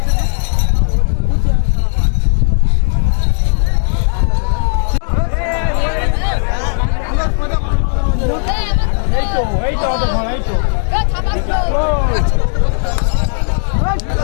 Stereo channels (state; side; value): silent; right; digital silence